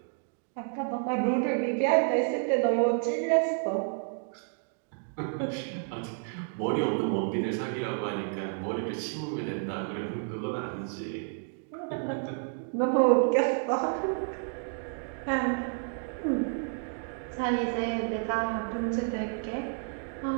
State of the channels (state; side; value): silent; left; 57 dB below the other